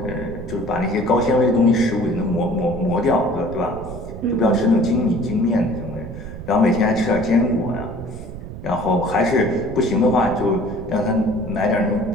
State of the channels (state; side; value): noise; right; rumble, 11 dB below the sound